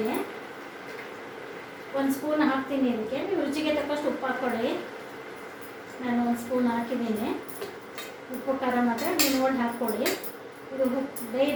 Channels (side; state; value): both; identical; correlation 1.00